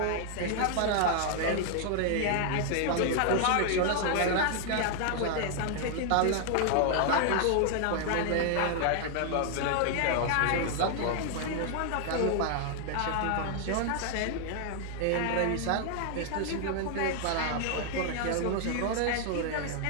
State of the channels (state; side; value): different; both; correlation 0.00